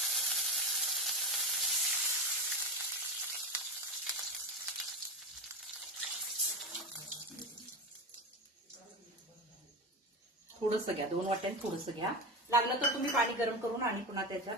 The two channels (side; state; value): both; normal; correlation 0.21